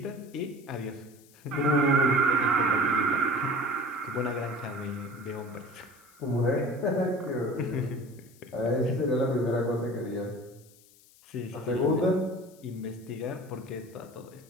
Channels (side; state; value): left; noise; hiss, 26 dB below the sound